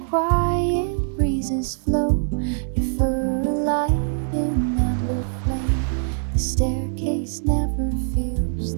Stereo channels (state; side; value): silent; left; digital silence